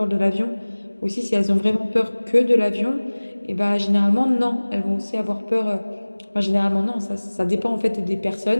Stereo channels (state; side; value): inverted; both; correlation -1.00